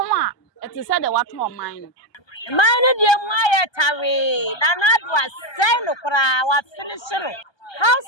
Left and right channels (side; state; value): right; late; 1.3 ms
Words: a it is said the what on mine. Mine de mu ayetawe. Na na do asai no kra wa finish no.